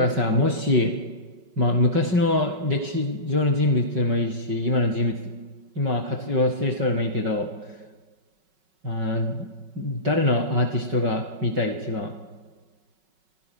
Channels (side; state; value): left; late; 5.3 ms